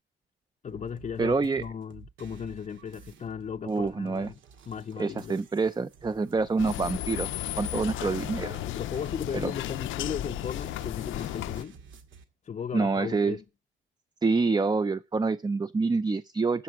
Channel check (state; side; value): normal; both; correlation 0.70